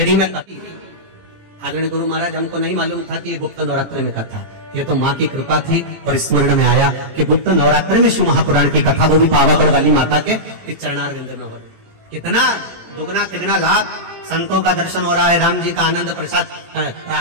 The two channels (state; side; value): late; left; 18 ms